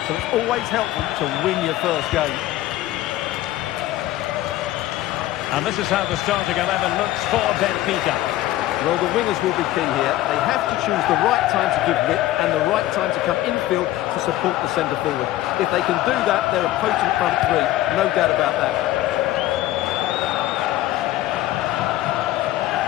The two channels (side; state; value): right; quieter; 15.2 dB